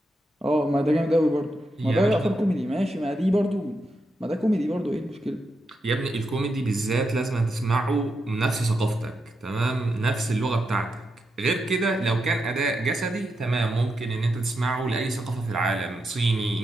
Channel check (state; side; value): normal; both; correlation 0.85